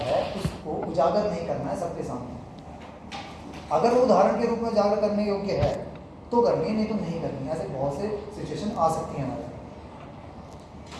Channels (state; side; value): identical; both; correlation 1.00